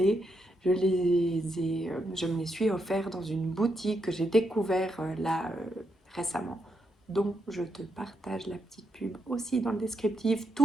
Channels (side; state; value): both; normal; correlation 0.81